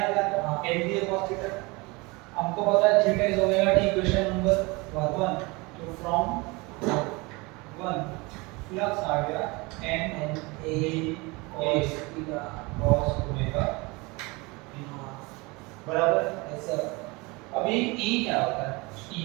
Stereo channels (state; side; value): quieter; left; 25.6 dB